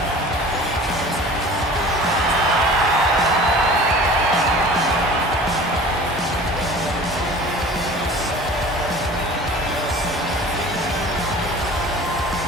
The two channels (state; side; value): normal; both; correlation 0.43